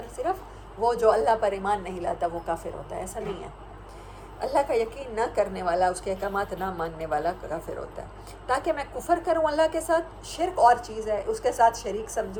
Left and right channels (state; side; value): identical; both; correlation 1.00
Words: صرف وہ جو اللہ پر ایمان نہیں لاتا وہ کافر ہوتا ہے، ایسا نہیں ہے۔ اللہ کا یقین نہ کرنے والا، اس کے احکامات نہ ماننے والا کافر ہوتا ہے۔ تاکہ میں کفر کروں اللہ کے ساتھ، شرک اور چیز ہے، اس کے ساتھ شریک